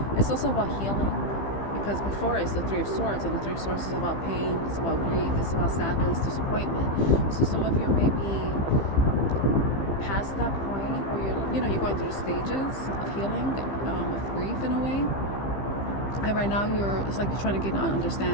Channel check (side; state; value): right; late; 15 ms